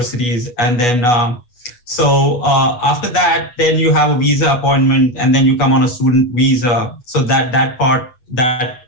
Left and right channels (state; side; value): late; right; 8.2 ms